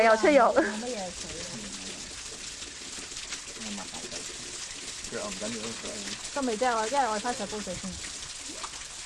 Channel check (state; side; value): identical; both; correlation 1.00